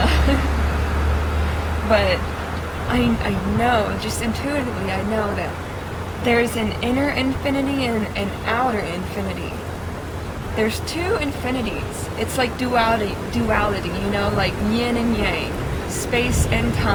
but I know, just intuitively, I know that there's an inner infinity and an outer infinity. There's two infinities. It's like duality, you know, like yin and yang, space and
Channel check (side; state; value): both; identical; correlation 1.00